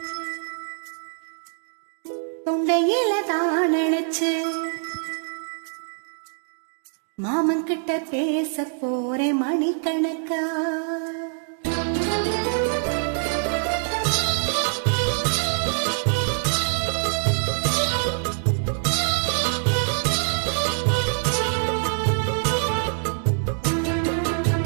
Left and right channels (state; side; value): silent; left; 62 dB below the other